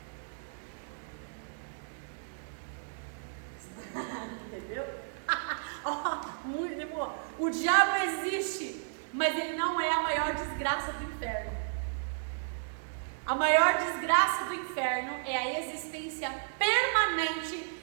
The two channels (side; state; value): left; silent; digital silence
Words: Entendeu? Muito bom. O diabo existe, mas ele não é a maior desgraça do inferno. A maior desgraça do inferno é a existência